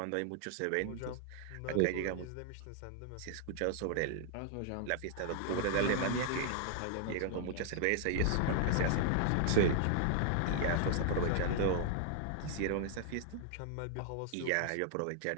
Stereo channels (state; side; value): different; both; correlation -0.01